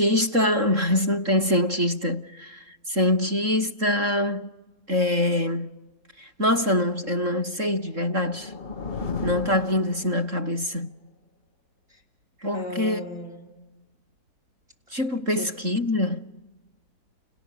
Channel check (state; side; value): late; left; 3.7 ms